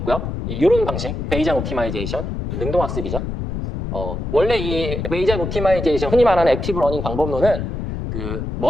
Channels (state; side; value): noise; left; rumble, 4 dB below the sound